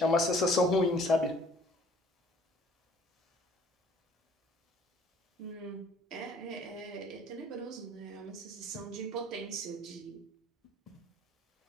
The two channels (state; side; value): normal; both; correlation 0.56